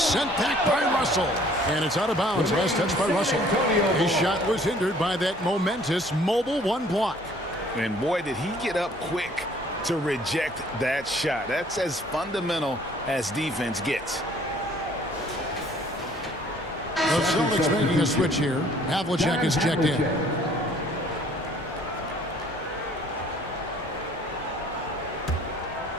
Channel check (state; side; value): normal; both; correlation 0.57